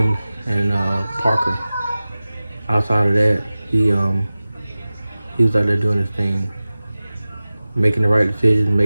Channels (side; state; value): both; inverted; correlation -0.96